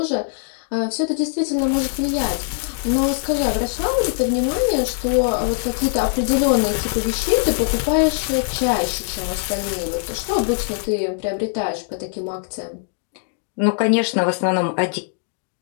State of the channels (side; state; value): right; silent; 63 dB below the other